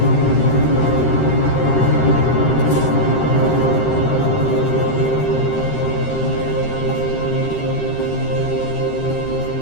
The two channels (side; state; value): right; late; 13 ms